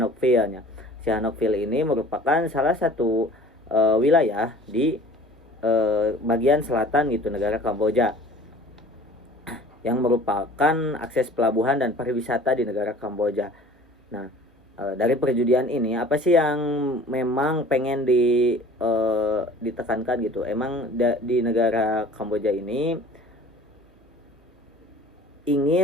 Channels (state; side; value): normal; both; correlation 0.47